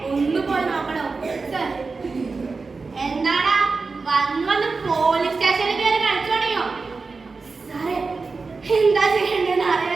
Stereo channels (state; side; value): quieter; left; 4.2 dB